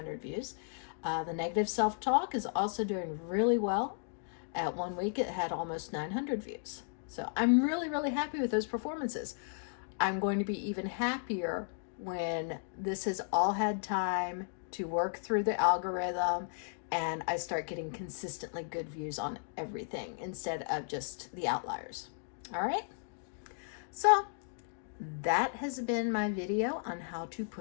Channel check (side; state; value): right; silent; digital silence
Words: views. The negative self-talk is also doing really well. At 1 week, it had almost 900 views. So I'm really, really happy with those performances. I'm going to be even happier when this has all had time to work through the algorithm and I start getting consistently good views on everything instead of just the outliers. All right, so that has been my video on how to